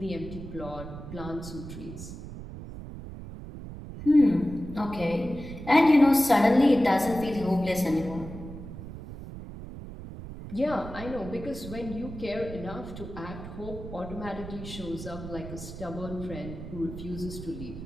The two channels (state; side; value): noise; right; rumble, 11 dB below the sound